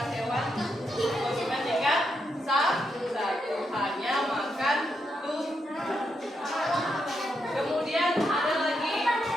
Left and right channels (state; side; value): normal; both; correlation 0.82